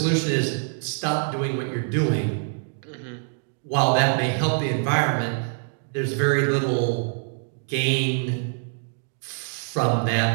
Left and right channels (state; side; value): silent; left; 62 dB below the other